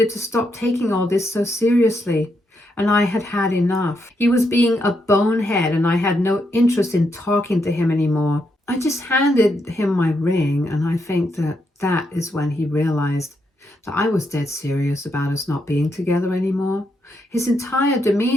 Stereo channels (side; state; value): both; normal; correlation 0.80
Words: to stop taking all this so seriously, and I had had enough. He was being a bonehead, and I had no interest in talking to him anymore. I just handed him my ring, and I think that is when he realized that I was dead serious about us not being together anymore. His entire